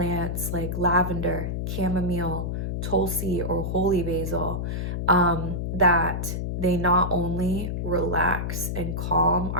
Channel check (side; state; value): left; noise; hum, 2 dB below the sound